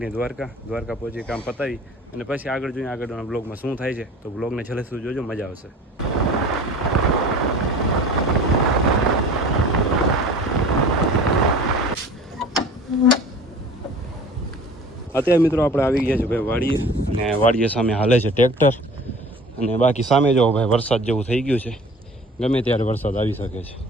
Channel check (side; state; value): both; normal; correlation 0.44